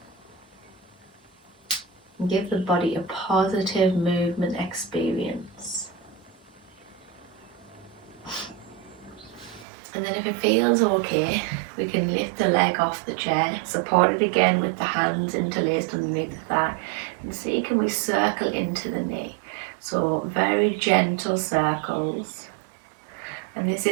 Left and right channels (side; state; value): left; drops out; at 9.7 s